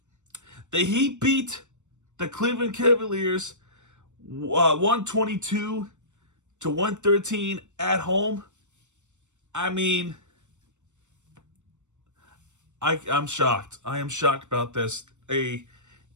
The Heat beat the Cleveland Cavaliers 122-113 at home. I mean, I'm shocked. I am shocked about this. A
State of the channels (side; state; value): left; late; 0.84 ms